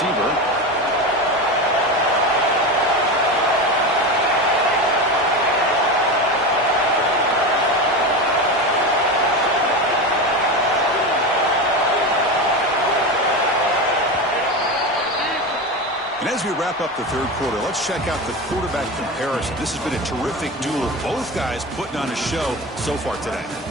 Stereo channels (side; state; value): both; normal; correlation 0.22